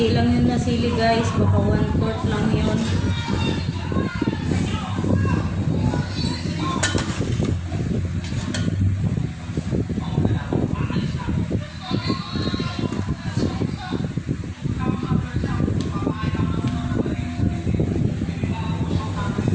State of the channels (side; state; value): both; identical; correlation 1.00